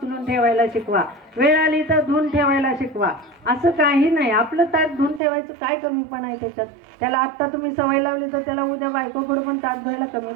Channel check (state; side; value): drops out; left; at 5.2 s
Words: ठेवायला शिकवा. वेळ आली तर धुवून ठेवायला शिकवा. असं काही नाही. आपलं ताट धुवून ठेवायचं काय कमीपणा आहे त्याच्यात? त्याला आत्ता तुम्ही सवय लावली तर त्याला उद्या बायकोकडे पण ताट धुवायला